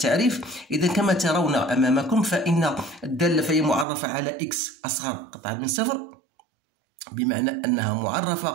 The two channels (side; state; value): left; drops out; at 3.9 s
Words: إذا كما ترون أمامكم فإن الدالة فهي معرفة على إكس أصغر قطعا من صفر، بمعنى أنها